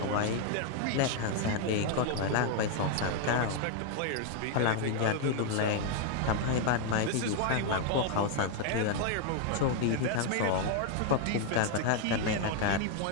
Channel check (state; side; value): different; both; correlation 0.00